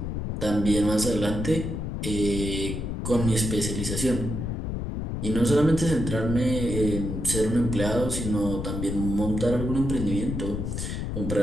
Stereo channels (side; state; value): left; noise; rumble, 3 dB below the sound